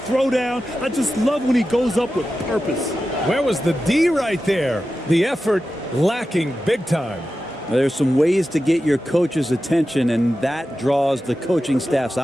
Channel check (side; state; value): both; normal; correlation 0.92